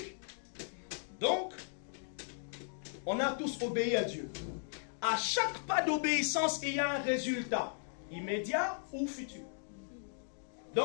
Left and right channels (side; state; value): right; silent; digital silence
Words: Donc, on a tous obéi à Dieu. À chaque pas d'obéissance, il y a un résultat, immédiat ou futur.